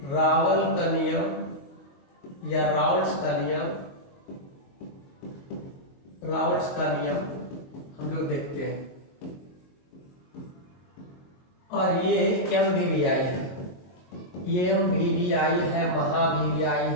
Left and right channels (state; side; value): late; right; 22 ms